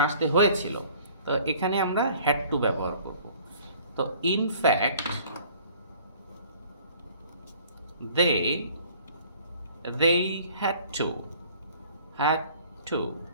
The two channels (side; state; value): both; inverted; correlation -0.53